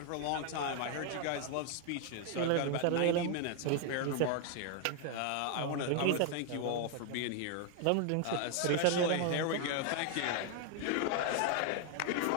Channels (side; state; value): both; different; correlation 0.00